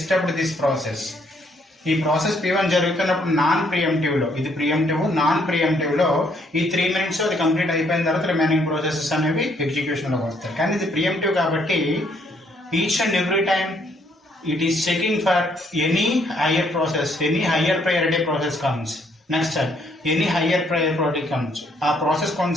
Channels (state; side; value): normal; both; correlation 0.69